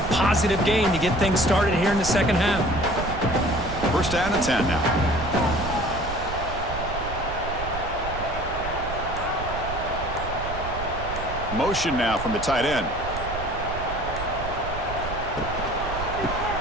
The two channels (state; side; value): noise; right; rumble, 8 dB below the sound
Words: positive gain to get things started here in the second half. First down and 10 now. Motion now from the tight end.